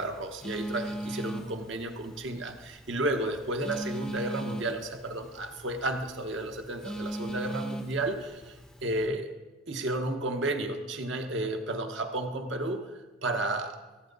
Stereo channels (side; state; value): both; normal; correlation 0.36